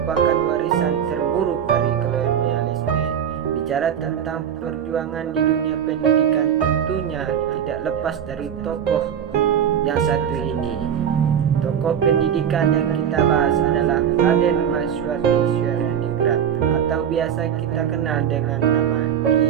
warisan terburuk dari kolonialisme. Bicara tentang perjuangan di dunia pendidikan tentunya tidak lepas dari tokoh yang satu ini. Tokoh pendidikan yang kita bahas adalah Raden Masyuad di Swaningrat atau biasa kita kenal dengan nama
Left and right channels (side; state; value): left; quieter; 8.8 dB